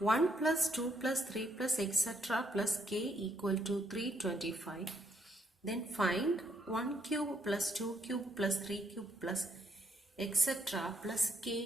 plus 2 plus 3 plus etc. plus k equal to 325, then find 1 cube plus 2 cube plus 3 cube plus etc. plus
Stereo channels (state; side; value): normal; both; correlation 0.73